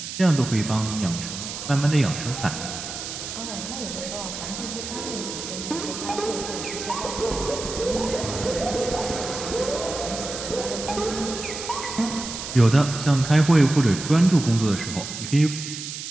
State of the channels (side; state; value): right; noise; hiss, 8 dB below the sound